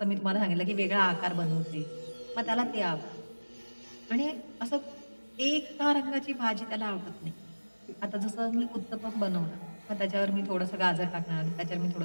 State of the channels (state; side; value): inverted; both; correlation -1.00